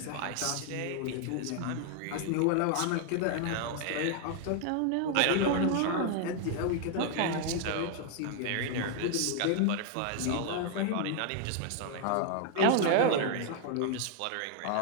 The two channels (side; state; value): both; different; correlation 0.00